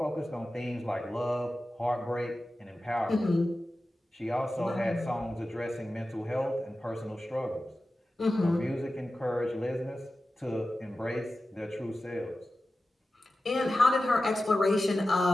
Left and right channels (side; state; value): both; normal; correlation 0.94